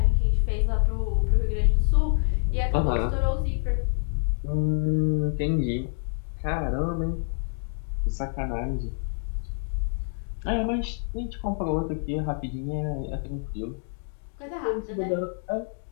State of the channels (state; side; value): silent; right; digital silence